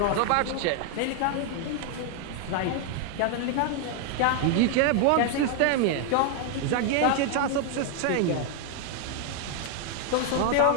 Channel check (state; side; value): different; both; correlation 0.00